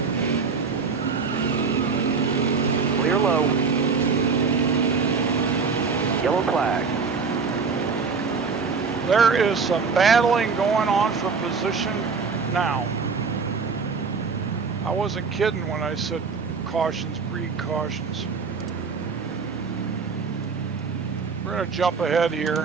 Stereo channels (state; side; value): quieter; left; 5.1 dB